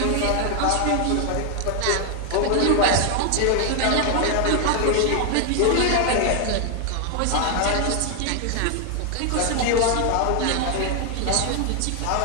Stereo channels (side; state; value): both; different; correlation 0.00